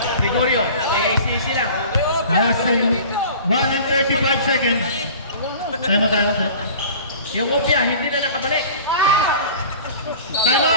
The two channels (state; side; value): inverted; both; correlation -0.42